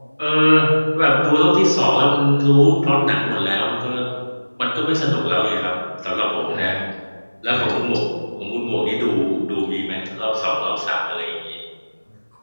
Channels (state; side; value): inverted; both; correlation -1.00